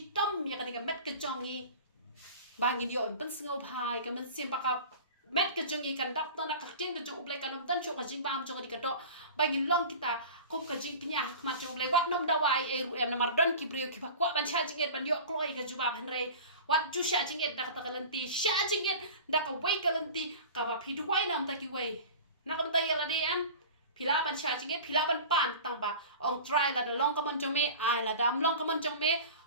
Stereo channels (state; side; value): inverted; both; correlation -0.36